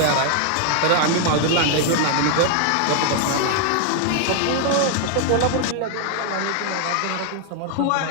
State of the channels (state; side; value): different; both; correlation 0.00